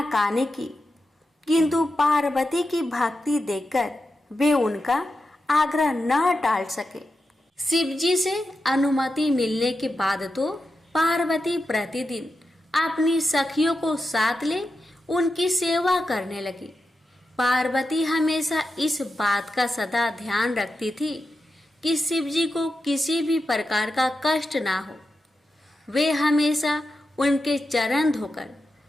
की, किंतु पार्वती की भक्ति देखकर वे उनका आग्रह न टाल सके। शिव जी से अनुमति मिलने के बाद तो पार्वती प्रतिदिन अपनी सखियों को साथ ले उनकी सेवा करने लगी। पार्वती हमेशा इस बात का सदा ध्यान रखती थी कि शिव जी को किसी भी प्रकार का कष्ट ना हो। वे हमेशा उनके चरण धोकर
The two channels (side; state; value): both; normal; correlation 0.89